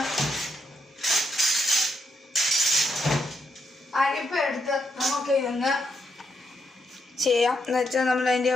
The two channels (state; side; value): normal; both; correlation 0.79